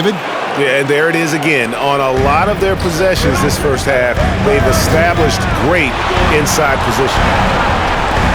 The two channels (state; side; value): identical; both; correlation 1.00